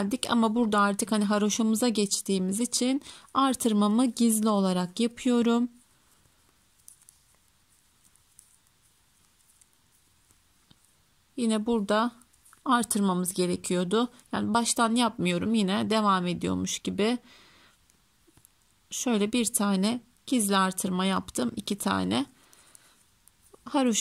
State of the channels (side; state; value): both; identical; correlation 1.00